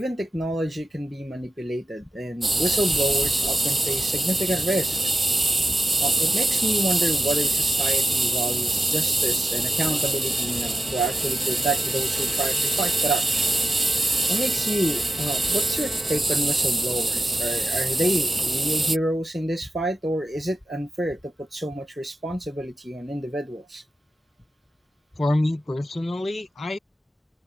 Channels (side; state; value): both; normal; correlation 0.91